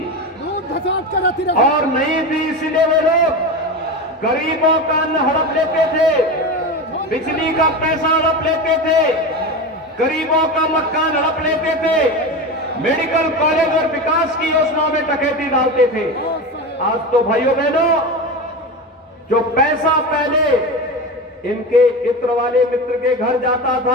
और नहीं थी, इसलिए वे लोग गरीबों का अन्न हड़प लेते थे, बिजली का पैसा हड़प लेते थे, गरीबों का मकान हड़प लेते थे, मेडिकल कॉलेज और विकास की योजनाओं में डकैती डालते थे। आज तो भाइयों बहनों, जो पैसा पहले इनके इत्र वाले मित्र के घर जाता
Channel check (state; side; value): normal; both; correlation 0.23